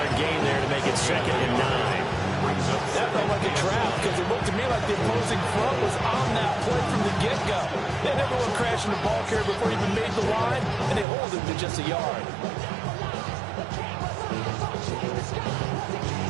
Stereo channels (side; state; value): left; drops out; at 11.1 s